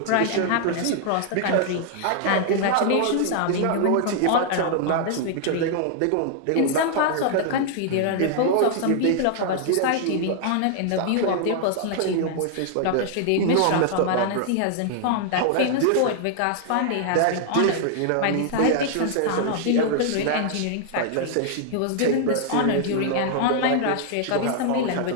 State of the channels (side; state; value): both; different; correlation -0.01